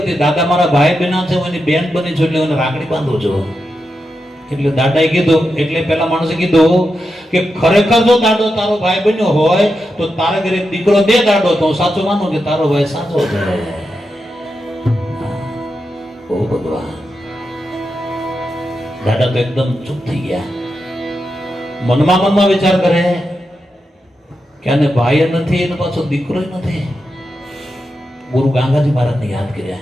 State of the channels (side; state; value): both; normal; correlation 0.87